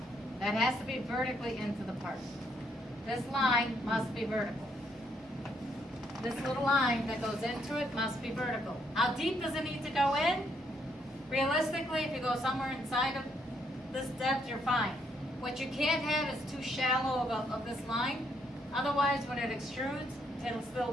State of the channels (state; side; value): normal; both; correlation 0.73